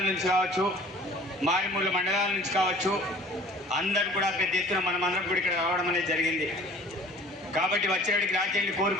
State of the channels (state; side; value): normal; both; correlation 0.48